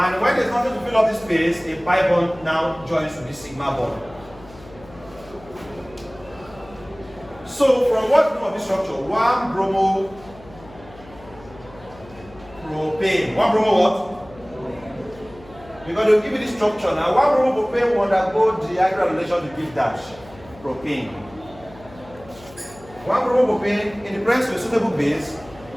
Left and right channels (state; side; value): noise; left; hum, 21 dB below the sound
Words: when there's nothing to fill up this space, a pi bond now joins to the sigma bond. So from what we know of this structure, 1 bromo propane. 1 bromo what? Because they'll give you this structure now. 1 bromo propane will undergo dehydrogenation to give dash propane. 1 bromo propane in the presence of a suitable base